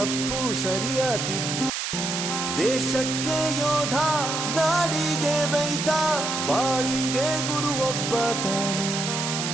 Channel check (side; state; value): right; noise; hiss, 2 dB below the sound